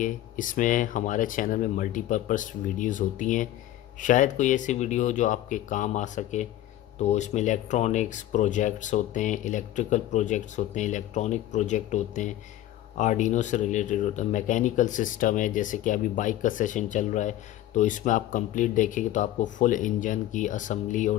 इसमें हमारे चैनल में मल्टीपर्पज़ वीडियोस होती हैं, शायद कोई ऐसी वीडियो हो जो आपके काम आ सके। तो इसमें इलेक्ट्रॉनिक्स प्रोजेक्ट्स होते हैं, इलेक्ट्रिकल प्रोजेक्ट्स होते हैं, इलेक्ट्रॉनिक प्रोजेक्ट होते हैं, आर्डिनो से रिलेटेड होता है। मैकेनिकल सिस्टम है, जैसे कि अभी बाइक का सेशन चल रहा है, तो इसमें आप कंप्लीट देखेंगे तो आपको फुल इंजन की असेंबली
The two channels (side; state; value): right; quieter; 13.7 dB